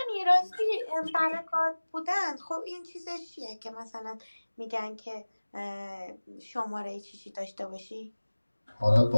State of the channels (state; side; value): inverted; both; correlation -1.00